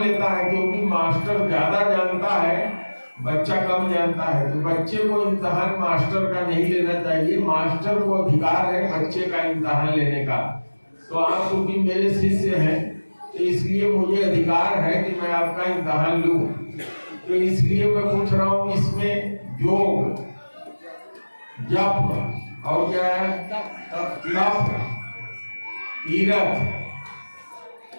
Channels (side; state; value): both; inverted; correlation -1.00